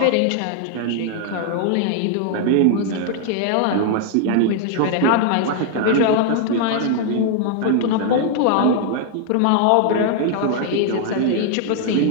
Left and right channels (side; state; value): both; different; correlation 0.00